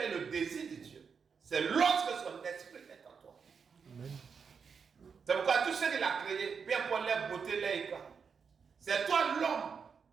et le désir de Dieu, c'est lorsque son esprit est en toi. Amen. C'est pourquoi tout ce qu'il a créé, bien pour les beautés, les éclats, c'est toi l'homme,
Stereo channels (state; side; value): quieter; left; 6.1 dB